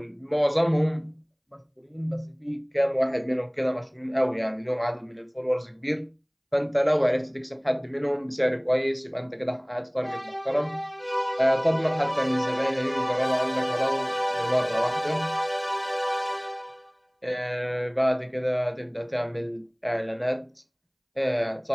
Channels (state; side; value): identical; both; correlation 1.00